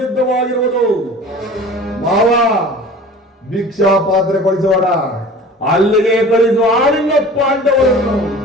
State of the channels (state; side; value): normal; both; correlation 0.41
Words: ಮಾವ, ಭಿಕ್ಷಾ ಪಾತ್ರೆ ಕಳಿಸೋಣ, ಅಲ್ಲಿಗೆ ಕಳಿಸುವ ಆಳಿನ ಪಾಂಡವರನ್ನು.